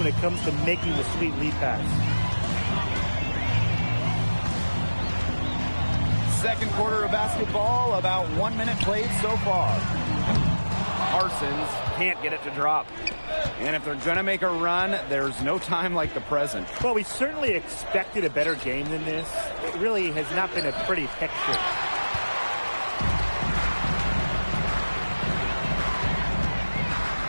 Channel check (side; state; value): both; inverted; correlation -1.00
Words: it comes to making the sweet lead pass. Second quarter of basketball, about 1 minute played so far. Parsons can't get it to drop. And if they're going to make a run, there's no time like the present. Well, we certainly expected a better game than this. It really has not been a pretty picture.